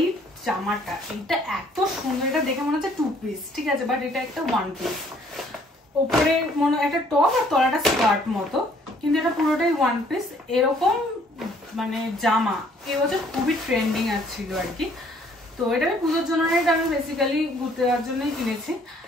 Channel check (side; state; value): both; normal; correlation 0.61